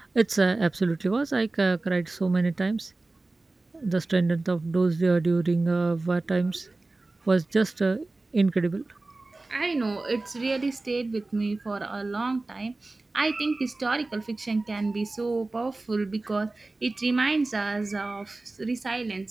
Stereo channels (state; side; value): quieter; left; 3.2 dB